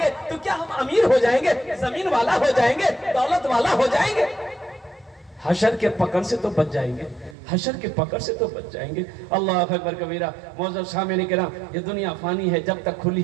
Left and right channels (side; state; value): left; drops out; at 7.4 s